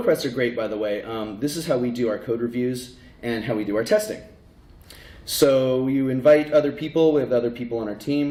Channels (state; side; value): identical; both; correlation 1.00